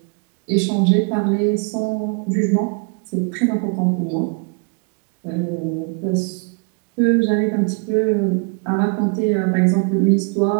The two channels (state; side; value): quieter; left; 34.8 dB